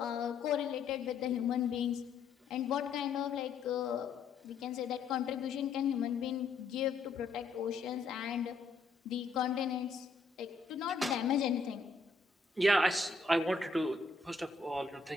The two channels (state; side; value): quieter; right; 4.2 dB